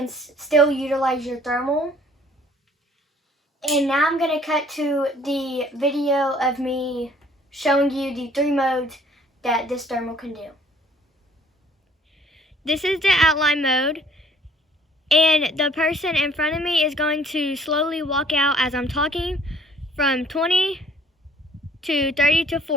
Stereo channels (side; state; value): both; normal; correlation 0.57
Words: still utilize your thermal. And now I'm going to cut to the video of me showing you the 3 modes that this thermal can do. This is the outline mode. And the person in front of me is going to slowly walk out as I'm talking from 20 to 30 to